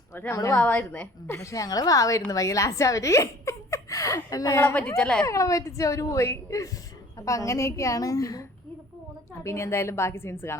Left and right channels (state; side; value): normal; both; correlation 0.50